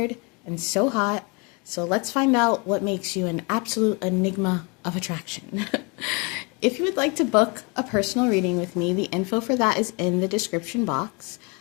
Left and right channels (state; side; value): quieter; right; 30.5 dB